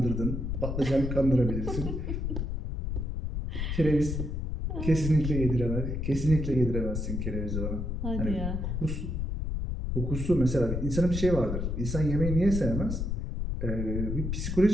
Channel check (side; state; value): left; noise; rumble, 2 dB below the sound